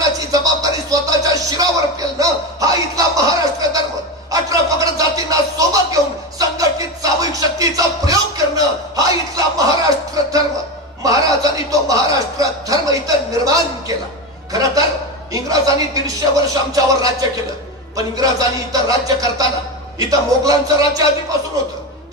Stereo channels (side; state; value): both; normal; correlation 0.18